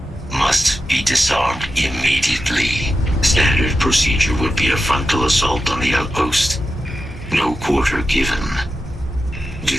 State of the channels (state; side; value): normal; both; correlation 0.90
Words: must be disarmed immediately. Standard procedure would be a frontal assault on the outpost. No quarter given. Do